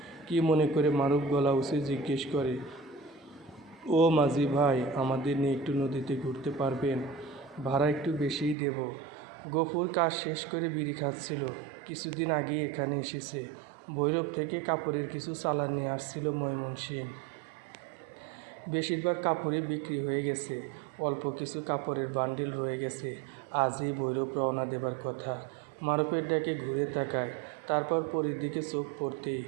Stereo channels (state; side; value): drops out; left; at 8.6 s